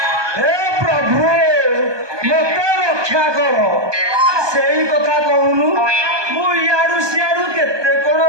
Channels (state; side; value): late; left; 1.2 ms